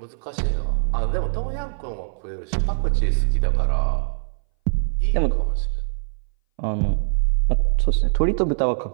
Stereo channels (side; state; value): left; silent; 61 dB below the other